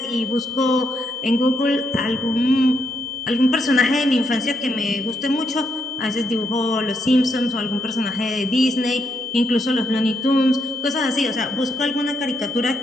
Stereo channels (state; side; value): normal; both; correlation 0.78